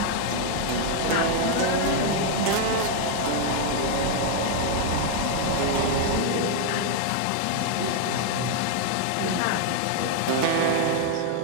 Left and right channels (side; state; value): both; different; correlation 0.00